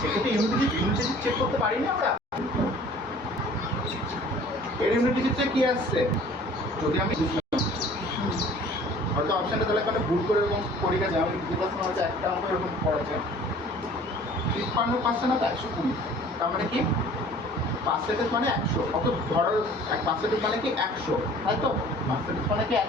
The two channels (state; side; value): normal; both; correlation 0.49